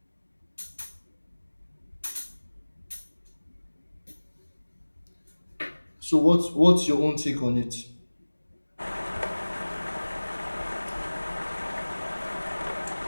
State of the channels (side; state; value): both; inverted; correlation -1.00